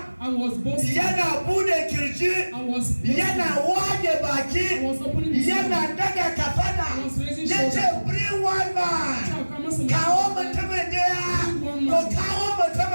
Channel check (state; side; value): inverted; both; correlation -1.00